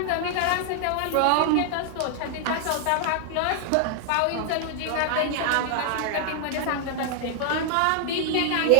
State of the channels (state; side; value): different; both; correlation 0.00